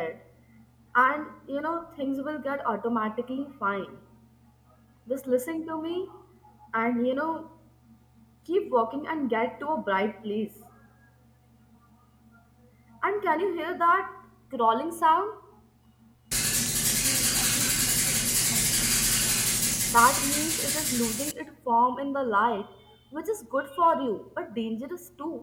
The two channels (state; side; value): identical; both; correlation 1.00